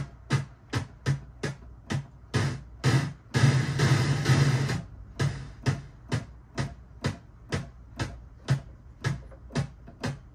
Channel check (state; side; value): identical; both; correlation 1.00